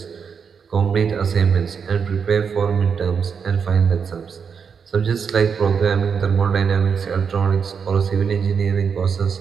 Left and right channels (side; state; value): left; quieter; 6.4 dB